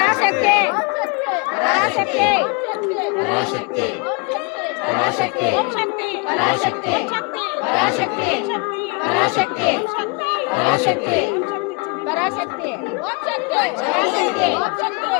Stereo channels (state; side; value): quieter; right; 32.1 dB